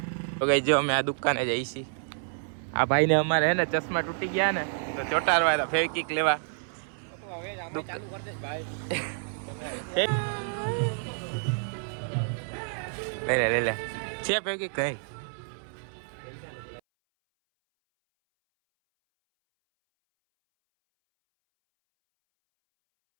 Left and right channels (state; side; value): silent; left; 59 dB below the other